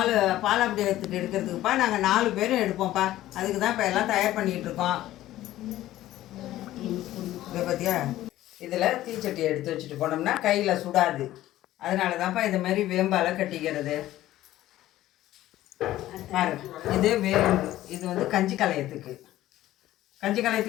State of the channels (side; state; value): right; quieter; 14.6 dB